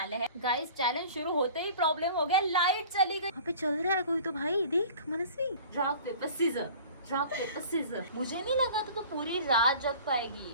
हैं। गाइस चैलेंज शुरू होते ही प्रॉब्लम हो गया, लाइट चली गई। वहाँ पे चल रहा है कोई तो भाई, देख मनस्वी। Rock paper scissor. मुझे नहीं लगा तो पूरी रात जग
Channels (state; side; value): inverted; both; correlation -0.44